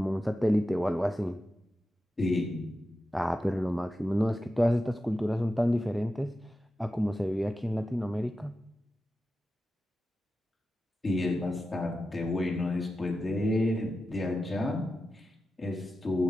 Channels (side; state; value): both; normal; correlation 0.92